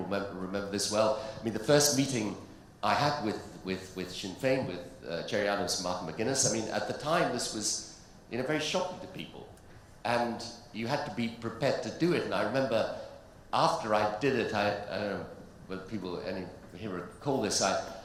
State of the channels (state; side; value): identical; both; correlation 1.00